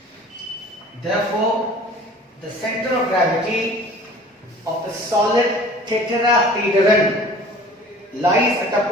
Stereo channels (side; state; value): both; normal; correlation 0.46